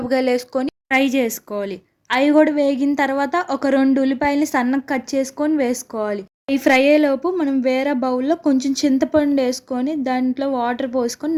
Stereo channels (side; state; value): both; identical; correlation 1.00